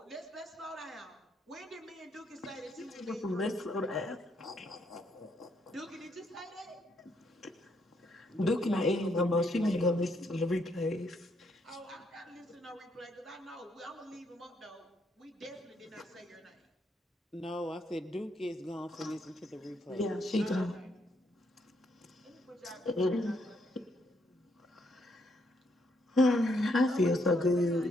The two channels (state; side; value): normal; both; correlation 0.74